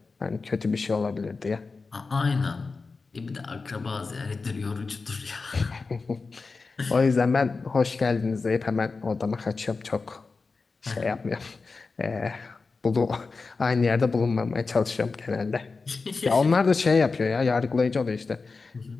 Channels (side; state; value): right; quieter; 4.2 dB